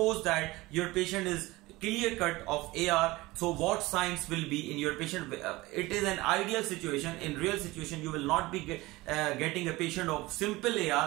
that your patient is clear cut of AR, so what signs will be in your patient? It is an ideal situation. In real situation, you will not be getting a patient of simple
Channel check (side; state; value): left; quieter; 20.4 dB